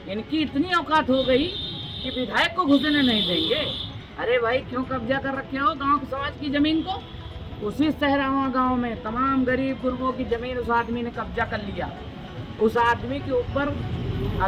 इनकी इतनी औकात हो गई कि विधायक को घुसने नहीं देंगे। अरे भाई, क्यों कब्जा कर रखे हो गांव के समाज की जमीन को? उसी सहरावा गांव में तमाम गरीब गुरबों की जमीन उस आदमी ने कब्जा कर लिया। उस आदमी के ऊपर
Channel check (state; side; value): identical; both; correlation 1.00